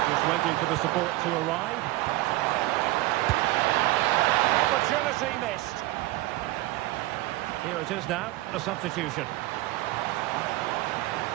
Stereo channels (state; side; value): quieter; left; 18.2 dB